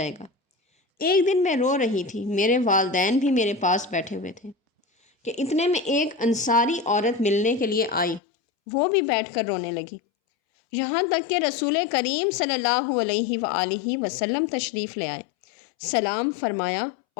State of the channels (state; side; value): drops out; right; at 8.2 s